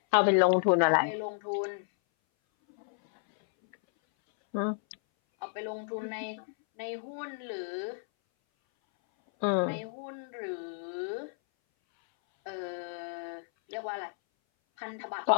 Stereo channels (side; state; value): right; silent; 57 dB below the other